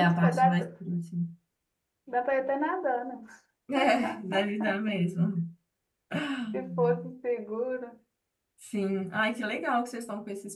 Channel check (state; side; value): identical; both; correlation 1.00